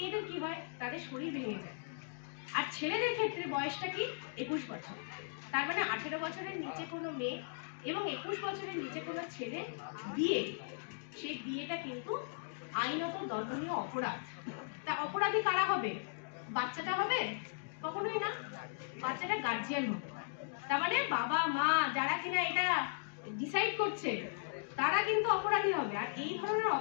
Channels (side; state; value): right; silent; digital silence